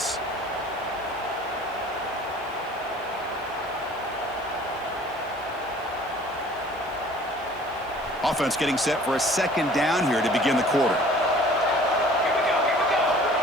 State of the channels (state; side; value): noise; left; hiss, 28 dB below the sound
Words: Offense getting set for a second down here to begin the quarter.